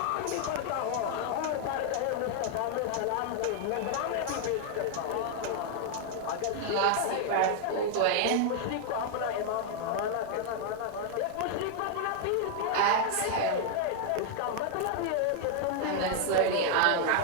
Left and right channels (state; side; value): different; both; correlation 0.00